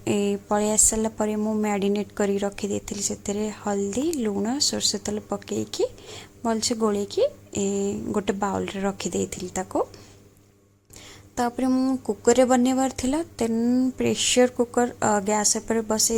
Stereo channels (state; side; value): identical; both; correlation 1.00